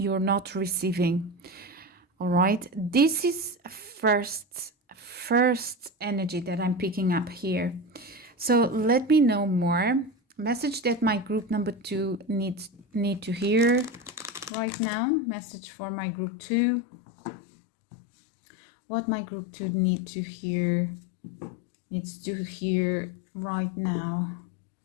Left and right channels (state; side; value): drops out; right; at 14.5 s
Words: not receiving. All right, this is first energy that I'm picking up here. So let me know more. Message that my group number 2 need to hear right now. Message for my group 2. What my group 2 needs to hear right now.